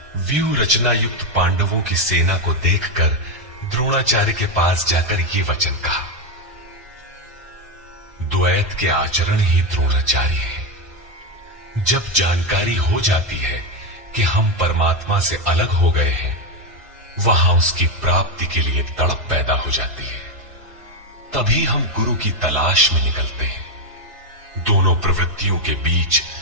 व्यूह रचना युक्त पांडवों की सेना को देखकर द्रोणाचार्य के पास जाकर ये वचन कहा। द्वैत के आचरण ही द्रोणाचार्य है। जब जानकारी हो जाती है कि हम परमात्मा से अलग हो गए हैं, वहां उसकी प्राप्ति के लिए तड़प पैदा हो जाती है। तभी हम गुरु की तलाश में निकलते हैं। दोनों प्रवृत्तियों के बीच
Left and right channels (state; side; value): late; left; 1.6 ms